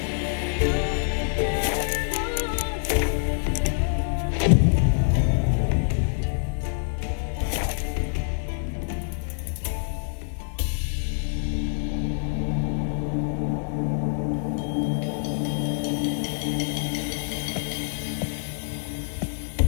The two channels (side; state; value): right; silent; digital silence